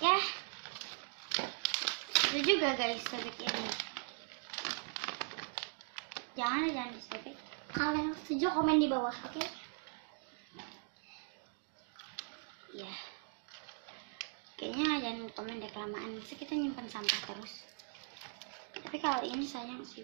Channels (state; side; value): silent; left; 51 dB below the other